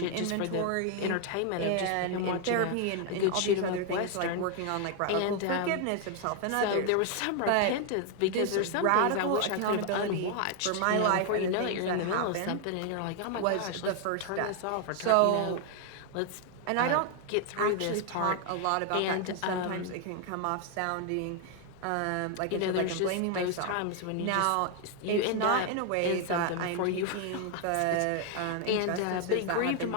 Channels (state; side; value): different; both; correlation 0.00